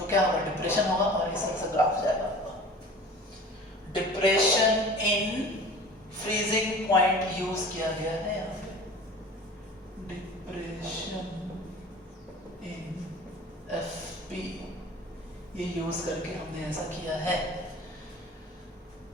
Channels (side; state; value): both; normal; correlation 0.42